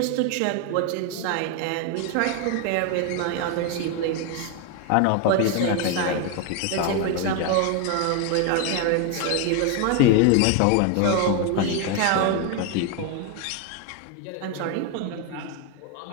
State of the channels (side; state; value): both; different; correlation 0.01